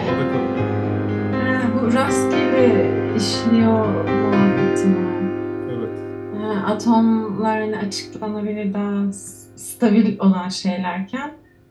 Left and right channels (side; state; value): both; identical; correlation 1.00